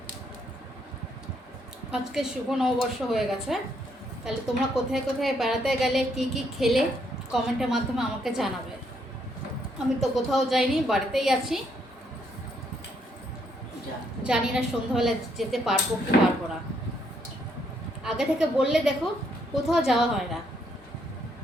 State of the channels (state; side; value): normal; both; correlation 0.72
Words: আজকে শুভ নববর্ষ হয়ে গেছে, তাহলে তোমরা কোথায় কোথায় বেড়াতে গেলে, কি কি খেলে, কমেন্টের মাধ্যমে আমাকে জানাবে। আমি তো কোথাও যাইনি, বাড়িতেই আছি। জানি না সন্ধ্যাবেলা যেতে পারবো কি পারবো না। আগে থেকে বললে দেখো কোথাও যাওয়া হয় না,